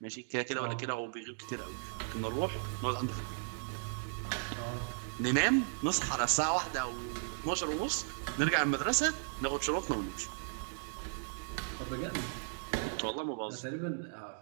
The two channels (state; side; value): silent; left; digital silence